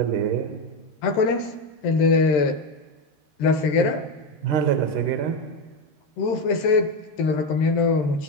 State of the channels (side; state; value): right; late; 13 ms